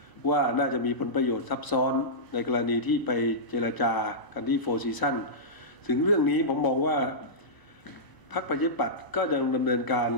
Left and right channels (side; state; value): right; late; 1.0 ms